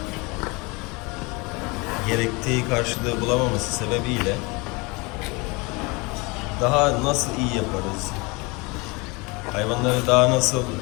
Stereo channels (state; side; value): quieter; right; 27.0 dB